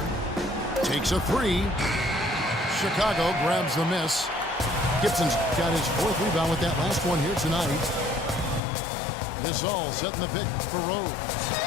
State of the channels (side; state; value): right; drops out; at 8.6 s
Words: Takes a 3. Chicago grabs the miss. Gibson's got his 4th rebound with that last one here tonight. Gasol setting the pick for Rose.